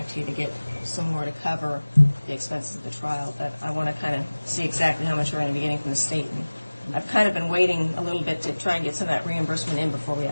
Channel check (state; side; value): inverted; both; correlation -1.00